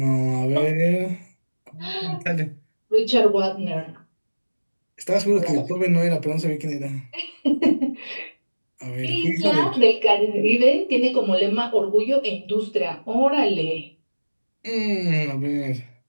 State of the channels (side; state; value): both; inverted; correlation -1.00